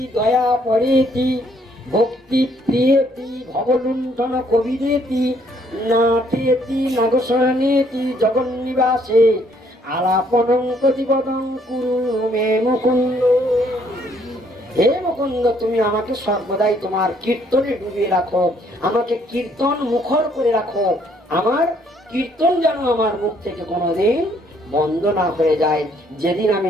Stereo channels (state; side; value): normal; both; correlation 0.66